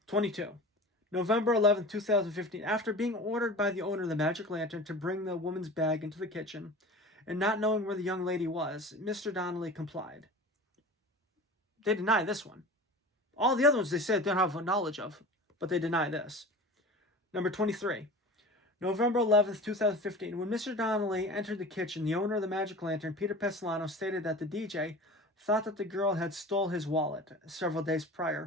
22. November 11th, 2015. After being ordered by the owner of the Magic Lantern to bring the woman's bag into the kitchen, and not knowing where the young lady was, Mr. Donnelly complied. They deny this one. All the other ones they said they don't have knowledge of, but they deny this. Number 23. November 11th, 2015. When Mr. Donnelly entered the kitchen, the owner of the Magic Lantern, Peter Pestilano, stated that the DJ thought that the girl had stole his wallet several days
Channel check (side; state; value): both; normal; correlation 0.36